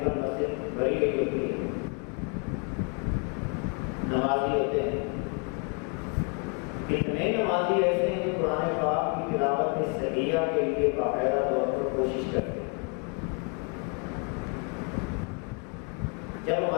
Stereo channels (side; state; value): right; quieter; 35.9 dB